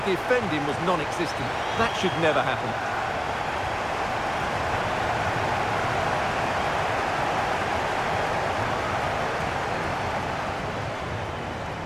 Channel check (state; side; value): identical; both; correlation 1.00